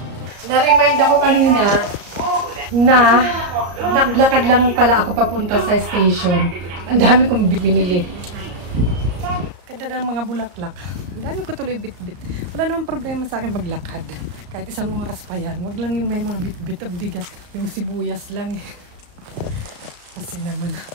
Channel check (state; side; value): late; left; 34 ms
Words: Na-remind ako kanina na naglakad lang pala ako papunta sa station. Ang dami kong binili. Ganda ng mga bulaklak. Ang dami ko tuloy bit-bit. Wala namang problema sa akin maglakad. Kahit isang oras pa yan. Wag lang yung may mga bit-bit ang bigat. Yung sibuyas lang eh. Kasi naman.